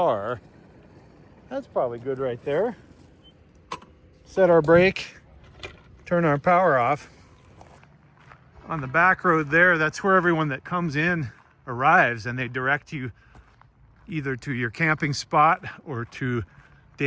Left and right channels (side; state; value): both; identical; correlation 1.00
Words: That's probably good right there. Set our brake, turn our power off. On the back road there, that's where everyone that comes in arrives, and they direct you either to your camping spot or to